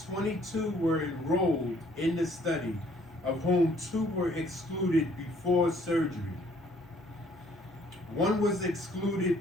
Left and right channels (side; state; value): both; normal; correlation 0.62